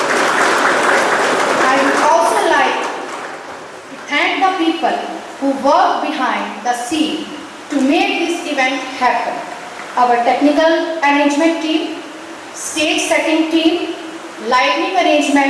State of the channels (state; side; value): identical; both; correlation 1.00